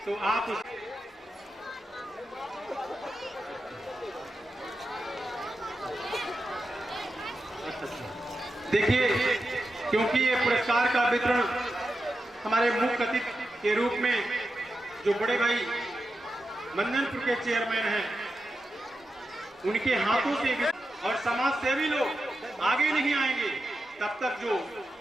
तो आप देखिए, क्योंकि ये पुरस्कार का वितरण हमारे मुख्य अतिथि के रूप में जो बड़े भाई मंदनपुर के चेयरमैन हैं, उनके हाथों से, और समाज सेवी लोग आगे नहीं आएंगे तब तक जो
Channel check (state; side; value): normal; both; correlation 0.89